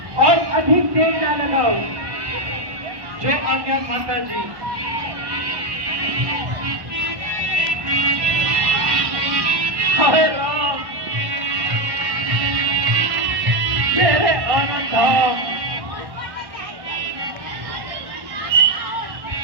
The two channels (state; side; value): late; left; 1.1 ms